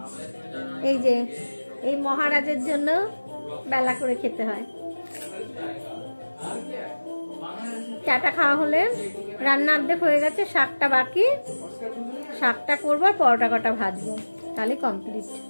এই যে এই মহারাজের জন্য বেলা করে খেতে হয়। চাটা খাওয়া হলে রান্না অর্ধেক হয়ে গেছে, শাকটা বাকি, শাকটা করবো আর পরোটা কটা ভাজবো, তাহলে কমপ্লিট।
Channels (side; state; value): both; inverted; correlation -1.00